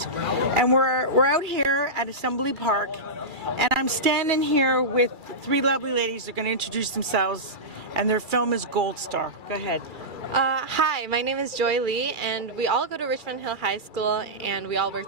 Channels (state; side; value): late; left; 2.3 ms